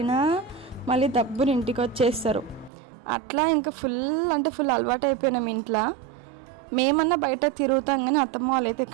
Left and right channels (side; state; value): left; drops out; at 2.7 s